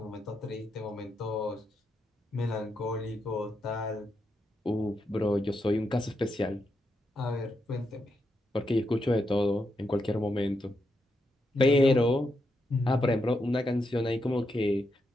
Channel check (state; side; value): normal; both; correlation 0.83